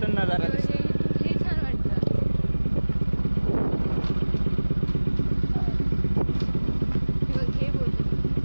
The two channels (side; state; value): both; inverted; correlation -1.00